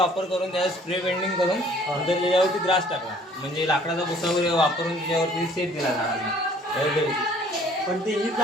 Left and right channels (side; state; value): both; normal; correlation 0.55